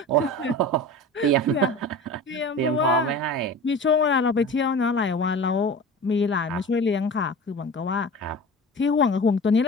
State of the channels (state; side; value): normal; both; correlation 0.35